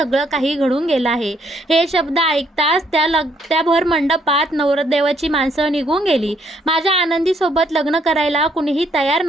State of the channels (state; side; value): normal; both; correlation 0.69